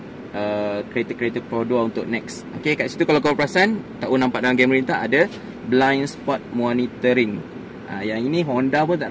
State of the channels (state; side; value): identical; both; correlation 1.00